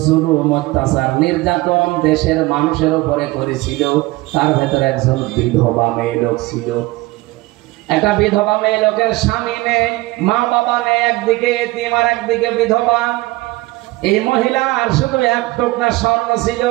জুলুম, অত্যাচার, নির্যাতন দেশের মানুষের উপরে করেছিল, তার ভেতরে একজন বিধবা মেয়ে লোক ছিল। একটা বিধবা মেয়ে লোকের স্বামী নেই, মা বাবা নেই, একদিকে এতিম আর একদিকে বিধবা। এই মহিলার শুধু এক টুকরা স্বর্ণ ছিল,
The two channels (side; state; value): left; quieter; 20.6 dB